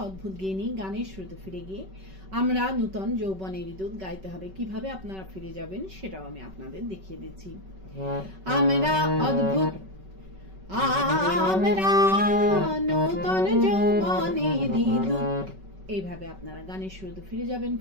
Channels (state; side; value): late; left; 5.3 ms